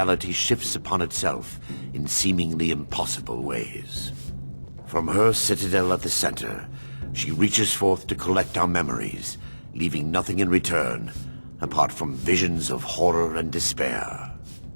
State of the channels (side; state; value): both; inverted; correlation -1.00